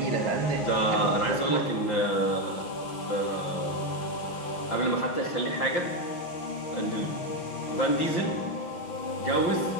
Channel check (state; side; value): late; right; 6.1 ms